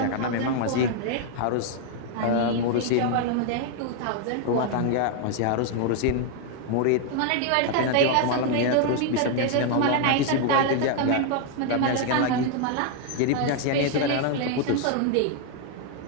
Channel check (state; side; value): different; both; correlation 0.00